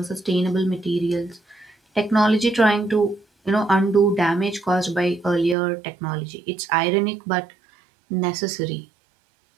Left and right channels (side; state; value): left; drops out; at 5.6 s